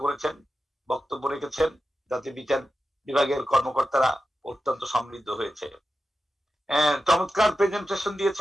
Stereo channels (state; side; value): normal; both; correlation 0.91